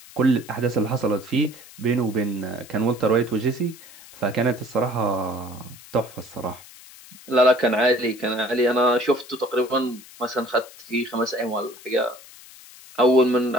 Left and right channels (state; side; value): noise; left; hiss, 20 dB below the sound